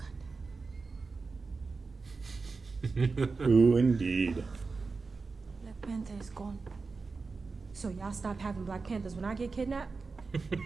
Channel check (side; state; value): left; quieter; 4.3 dB